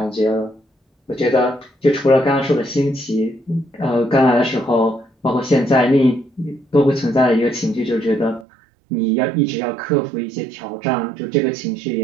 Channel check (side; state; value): left; drops out; at 8.5 s